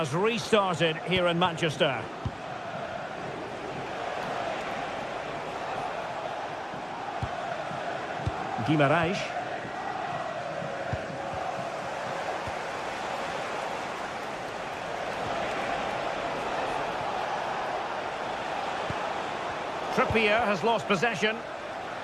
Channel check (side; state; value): both; identical; correlation 1.00